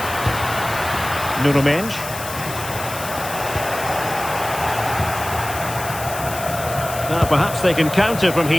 Nuno Mensch. Now perhaps they can counter from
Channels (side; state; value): left; noise; hiss, 10 dB below the sound